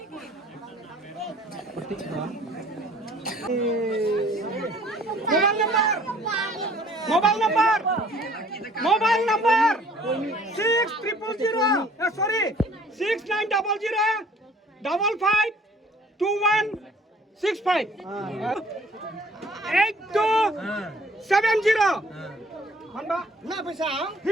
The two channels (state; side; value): normal; both; correlation 0.55